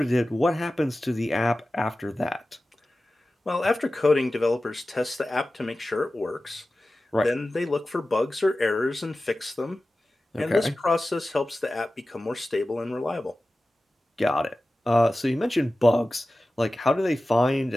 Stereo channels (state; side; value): normal; both; correlation 0.95